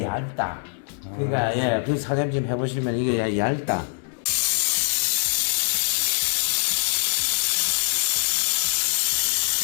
얇다. 그러니까 예, 그 사장님 좀 해보시면 이게 얇다.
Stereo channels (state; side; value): silent; right; digital silence